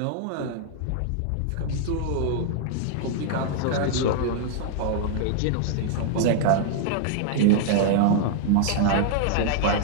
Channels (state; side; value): different; both; correlation -0.01